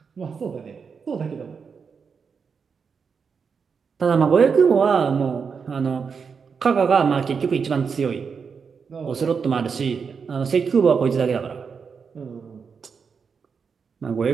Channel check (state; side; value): quieter; left; 5.9 dB